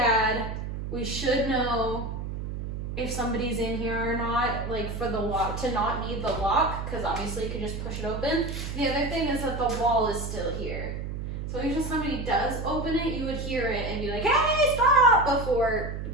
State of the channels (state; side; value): noise; right; hum, 5 dB below the sound